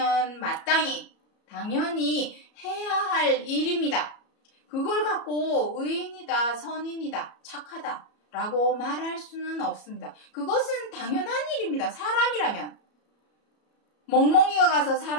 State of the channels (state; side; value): late; right; 33 ms